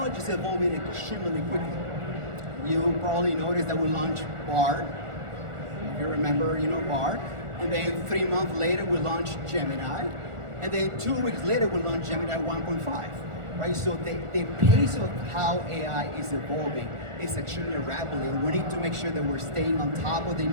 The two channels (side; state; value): left; late; 1.4 ms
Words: is evolving extremely quickly. You probably noticed that we launched Bard. You remember, Bard. And then 3 months later, we launched Gemini. And then 2 weeks later, we launched Gemini 1.5. Right? So the pace of how AI is evolving is extremely rapidly. We need to make sure that we're staying on top of the